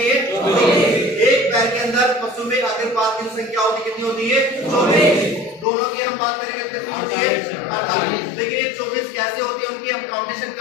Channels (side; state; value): right; drops out; at 5.7 s